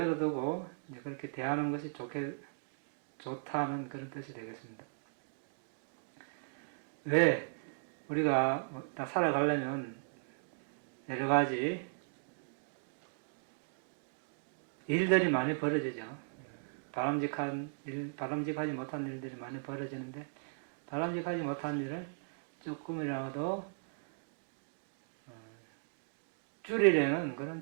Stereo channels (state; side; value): silent; left; digital silence